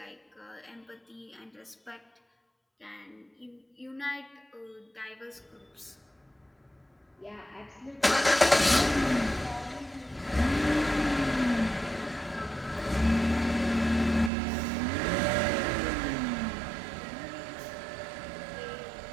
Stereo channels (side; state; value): left; drops out; at 14.3 s